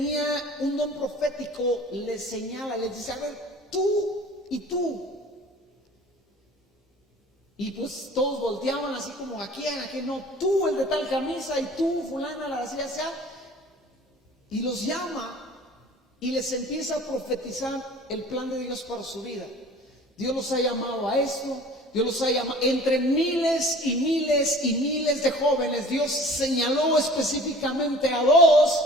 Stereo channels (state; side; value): normal; both; correlation 0.46